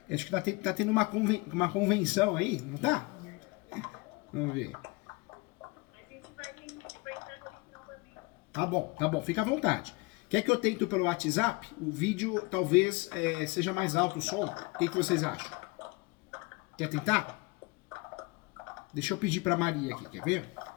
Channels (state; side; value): quieter; right; 25.1 dB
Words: Acho que tá tendo uma convenção aí, não tá? Vamos ver. Tá bom, fica à vontade. Quer que eu tente pelo WhatsApp? O vídeo talvez seja mais alto o som. O que vocês acham? Quer tentar? Deixa eu pedir pra Maria aqui, quer ver?